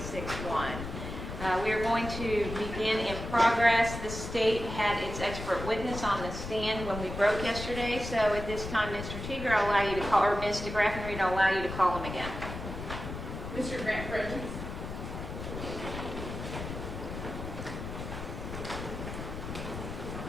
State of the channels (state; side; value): noise; left; rumble, 7 dB below the sound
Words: We are going to begin in progress. The state had its expert witness on the stand when we broke yesterday, so at this time, Mr. Teeger, I'll allow you to call, or Ms. DeGraffenreid, I'll allow you to call him again. Mr. Grant Fredericks.